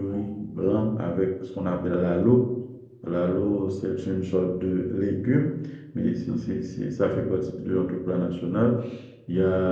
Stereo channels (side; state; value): both; identical; correlation 1.00